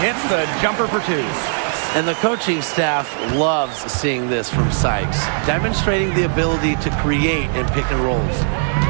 hits the jumper for 2. And the coaching staff loves seeing this from Sykes, demonstrating the ability to create in pick and rolls.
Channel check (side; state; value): left; silent; 60 dB below the other